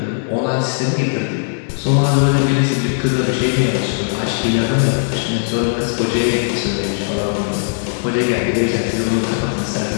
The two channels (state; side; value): silent; right; digital silence